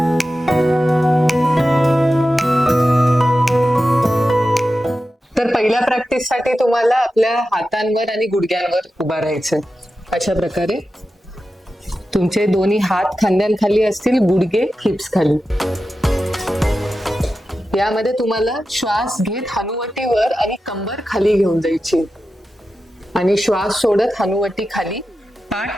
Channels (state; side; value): normal; both; correlation 0.92